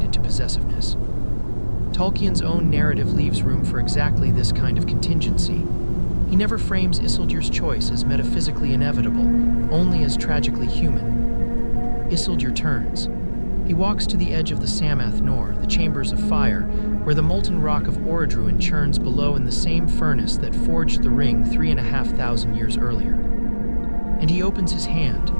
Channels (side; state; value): both; inverted; correlation -1.00